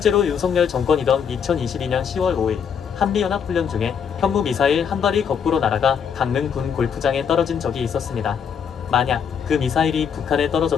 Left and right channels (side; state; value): right; quieter; 7.3 dB